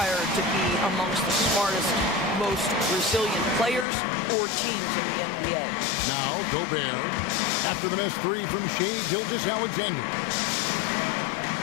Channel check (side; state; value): right; drops out; at 3.9 s